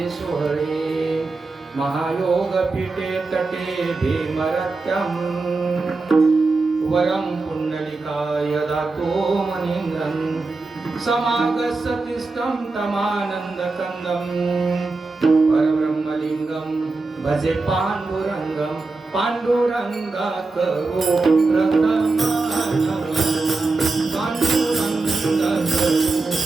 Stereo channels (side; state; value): left; quieter; 3.7 dB